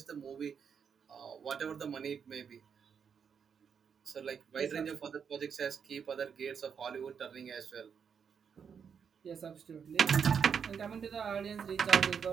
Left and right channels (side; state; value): left; quieter; 6.9 dB